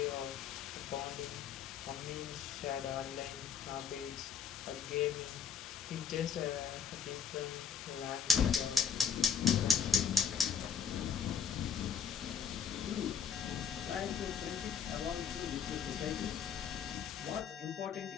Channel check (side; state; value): right; quieter; 6.9 dB